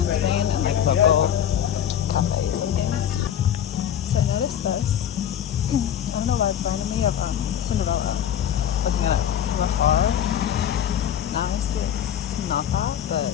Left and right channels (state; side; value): quieter; right; 9.9 dB